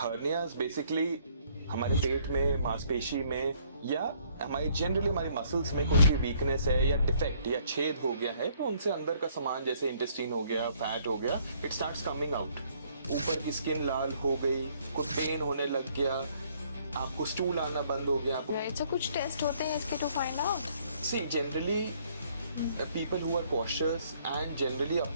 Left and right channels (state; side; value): inverted; both; correlation -0.64